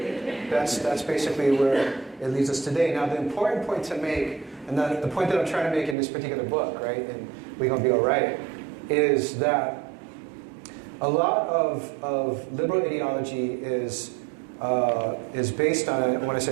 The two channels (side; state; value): left; drops out; at 6.0 s